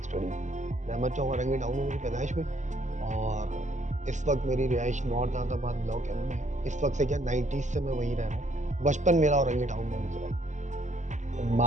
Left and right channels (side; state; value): left; late; 0.35 ms